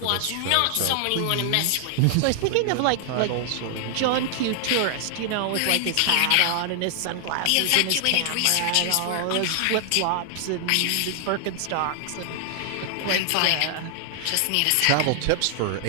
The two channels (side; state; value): both; different; correlation 0.00